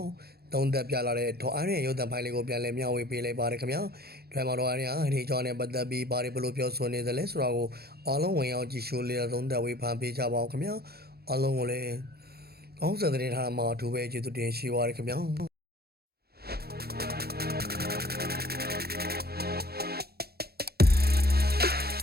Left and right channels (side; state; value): left; late; 0.46 ms